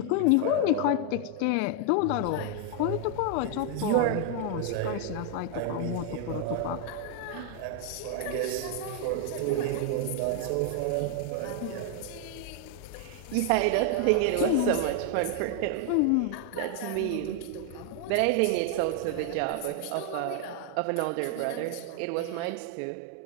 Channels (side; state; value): both; different; correlation 0.00